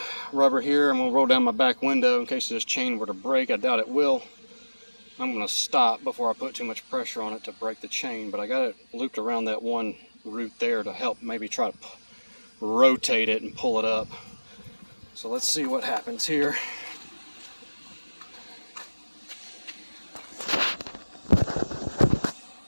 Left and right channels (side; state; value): both; inverted; correlation -1.00